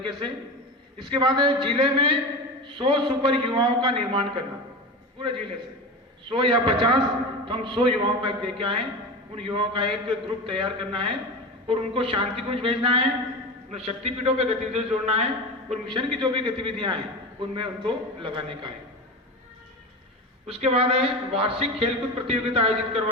से। इसके बाद है जिले में 100 सुपर युवाओं का निर्माण करना, पूरे जिले से 100 या 50, तो हम 100 युवाओं का एक दे के आए। उन युवाओं का एक ग्रुप तैयार करना है और उनको शांति कुंज भेजना है, उन्हें शक्तिपीठों पे गतिविधियों से जोड़ना है और मिशन की जो भी गतिविधियां हैं उनमें उनको लगाने का है। उसके बाद है वार्षिक खेलकूद प्रतियोगिता आयोजित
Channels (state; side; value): normal; both; correlation 0.26